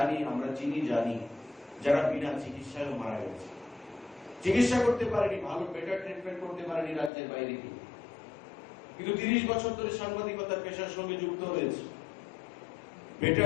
আমরা চিনি জানি যারা বিনা চিকিৎসায় মারা গেছে, চিকিৎসা করতে পারেনি, ভালো বেটার ট্রিটমেন্ট করতে পারেনি রাজ্যের বাইরে গিয়ে, কিন্তু 30 বছর ধরে সাংবাদিকতার পেশার সঙ্গে যুক্ত হয়েছে,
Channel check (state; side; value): drops out; right; at 7.1 s